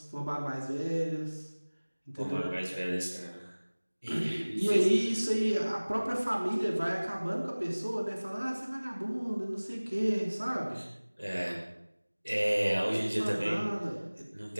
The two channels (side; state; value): both; inverted; correlation -1.00